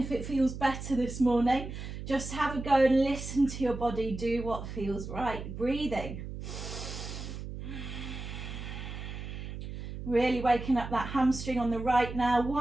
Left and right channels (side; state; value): right; noise; hum, 8 dB below the sound